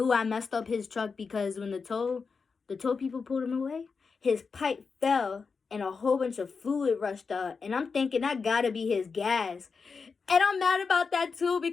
I messed up his truck, because when the tow people pulled him away, his pipe fell and a whole bunch of fluid rushed out. And I'm thinking that gotta be his gas. And I'm mad about that too,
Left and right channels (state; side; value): quieter; right; 5.1 dB